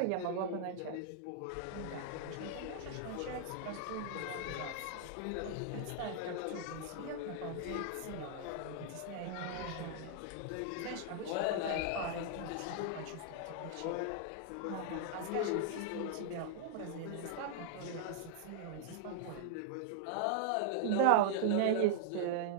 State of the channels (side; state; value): both; different; correlation -0.01